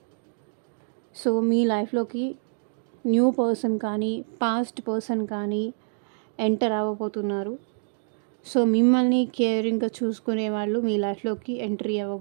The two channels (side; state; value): left; silent; digital silence